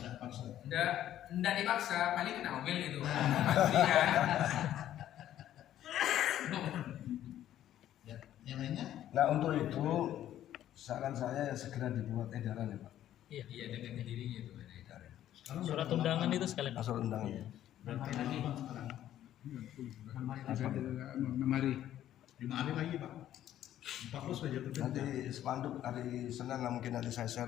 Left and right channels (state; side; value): quieter; right; 12.0 dB